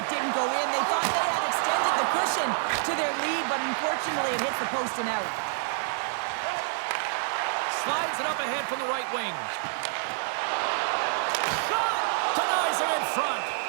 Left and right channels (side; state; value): left; silent; digital silence